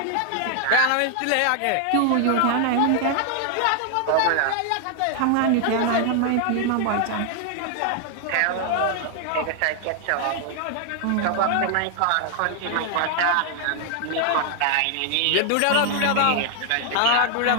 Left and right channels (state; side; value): different; both; correlation 0.00